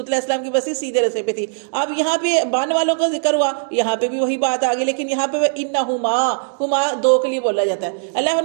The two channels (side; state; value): left; silent; digital silence